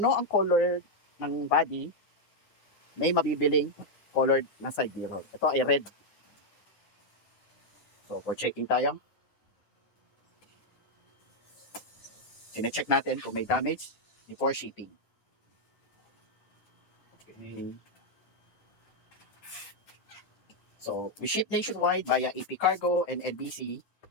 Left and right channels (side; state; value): right; late; 9.7 ms